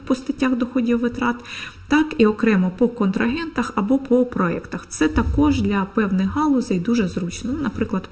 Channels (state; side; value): identical; both; correlation 1.00